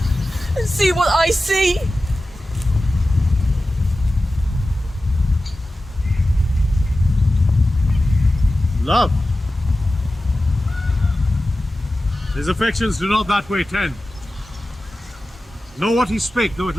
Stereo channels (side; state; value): both; normal; correlation 0.94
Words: and see what I see. Love. His affections do not that way tend. Know what he spake, though it